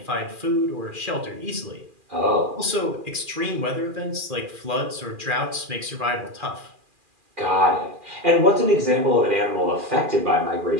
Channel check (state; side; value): late; left; 2.4 ms